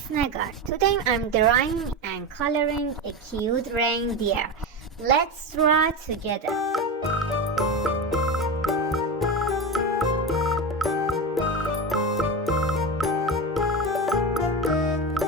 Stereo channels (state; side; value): normal; both; correlation 0.20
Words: Negar. Today I'm drawing and coloring a cute reindeer. Let's draw together.